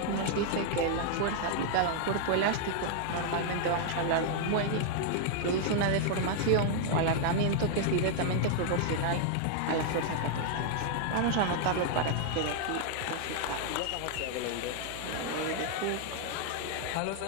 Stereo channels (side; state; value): both; different; correlation 0.00